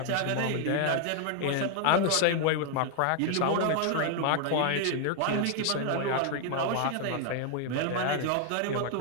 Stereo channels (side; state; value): both; different; correlation 0.00